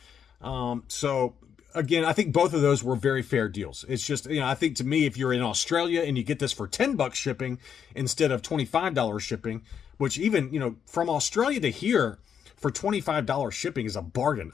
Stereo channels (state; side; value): quieter; right; 7.9 dB